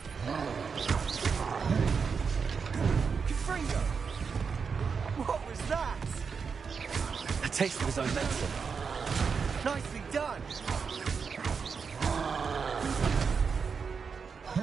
Confringo. What was that? A taste of his own medicine. Nicely done.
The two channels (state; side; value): quieter; left; 5.7 dB